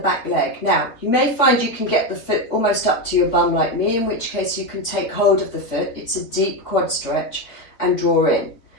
leg. Now, you may find you can get the foot almost up to your bum like me, in which case you can take hold of the foot. It's a deep quad stretch and draw in.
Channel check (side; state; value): right; late; 4.0 ms